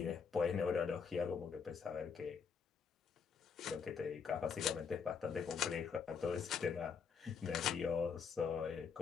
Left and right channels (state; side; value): quieter; right; 6.1 dB